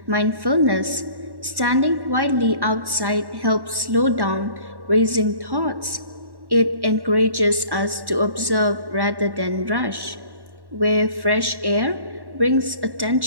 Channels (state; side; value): late; left; 1.1 ms